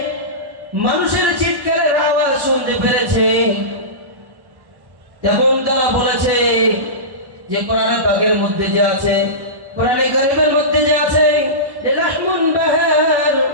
মানুষের চিৎকারের আওয়াজ শুনতে পেরেছে। তখন তারা বলেছে যে কোরআনে পাকের মধ্যে যে আছে, কোরআনে কারীমের মধ্যে যে আছে, রাহমুন বাহার,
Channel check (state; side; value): late; left; 1.1 ms